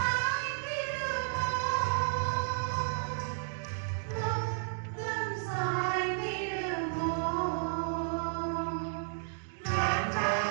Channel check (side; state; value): left; silent; digital silence